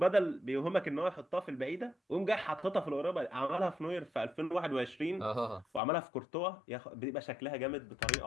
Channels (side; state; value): right; drops out; at 5.8 s